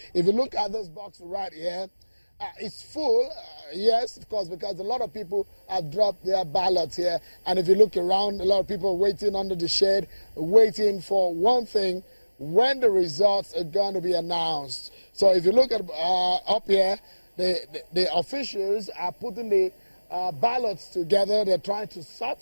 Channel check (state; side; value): inverted; both; correlation -1.00